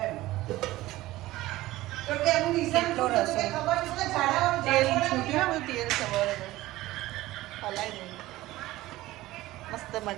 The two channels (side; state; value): left; quieter; 17.2 dB